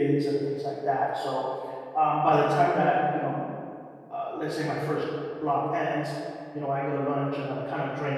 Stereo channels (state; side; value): identical; both; correlation 1.00